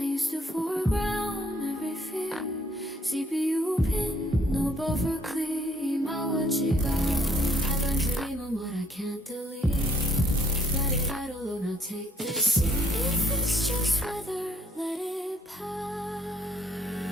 used to foreground every fear. CPU pin, no buffer clear. My what you got? I learned to dream on what I can't delete. Let it idle, oh now take this. If it's just weather, let it pass.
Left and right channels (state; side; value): normal; both; correlation 0.65